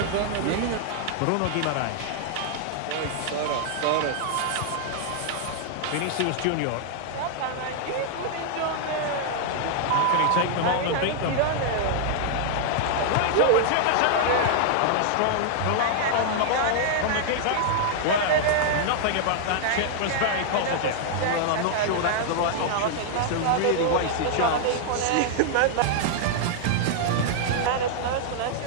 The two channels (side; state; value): both; different; correlation -0.01